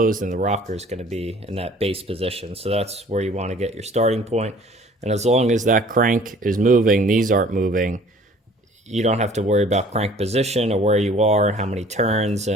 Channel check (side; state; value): both; normal; correlation 0.52